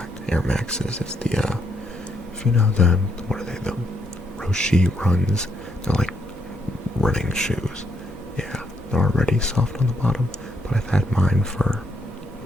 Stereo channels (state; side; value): normal; both; correlation 0.75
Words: Air Maxes. It's the if you know what are they, the Roshi runs. They're like running shoes. Yeah, they're already soft on the bottom, but I've had mine for